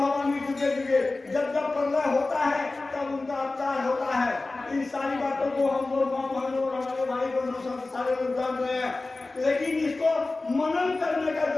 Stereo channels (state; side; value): quieter; right; 3.3 dB